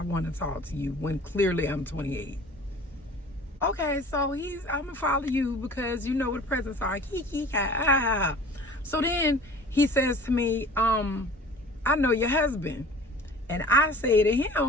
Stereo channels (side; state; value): both; normal; correlation 0.44